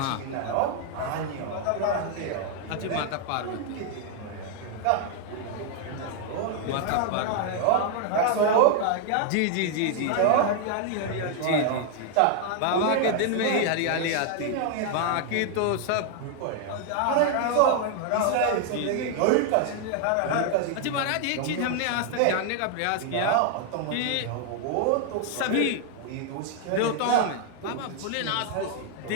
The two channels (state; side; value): different; both; correlation 0.00